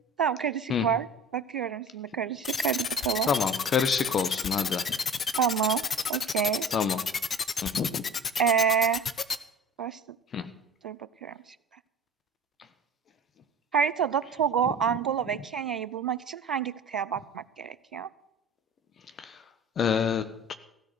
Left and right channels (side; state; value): both; normal; correlation 0.40